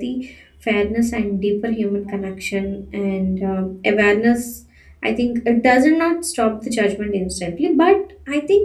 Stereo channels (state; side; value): identical; both; correlation 1.00